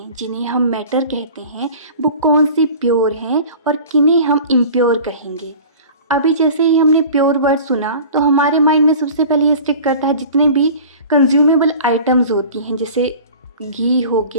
जिन्हें हम मैटर कहते हैं वो कौन सी प्योर हैं और किन्हें हम इम्प्योर कहेंगे। अभी जैसे ही हमने प्योर वर्ड सुना तो हमारे माइंड में सबसे पहले ये स्टिक करता है जितने भी कंज्यूमेबल आइटम्स होती हैं, जैसे घी हो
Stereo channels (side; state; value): both; inverted; correlation -0.41